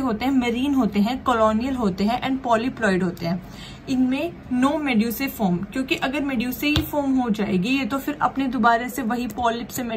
हैं? मरीन होते हैं, कॉलोनियल होते हैं एंड पॉलीप्लॉइड होते हैं। इनमें नो मेड्यूसे फॉर्म, क्योंकि अगर मेड्यूसे ही फॉर्म हो जाएगी ये तो फिर अपने दोबारा से वही पॉलिप से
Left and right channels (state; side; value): identical; both; correlation 1.00